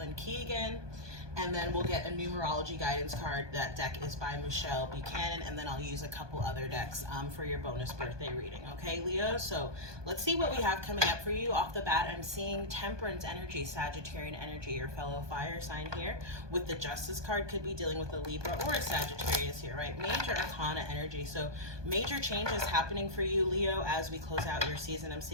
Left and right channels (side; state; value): left; late; 1.2 ms